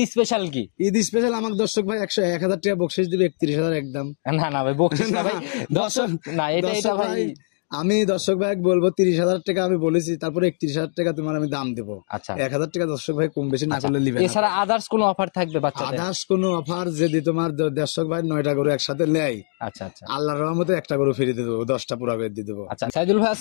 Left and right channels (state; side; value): silent; right; digital silence